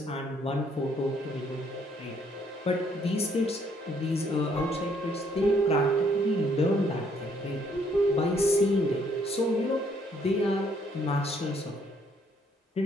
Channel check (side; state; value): both; normal; correlation 0.67